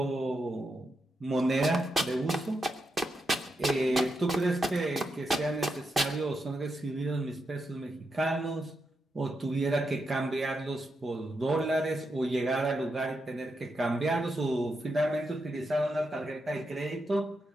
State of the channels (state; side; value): normal; both; correlation 0.84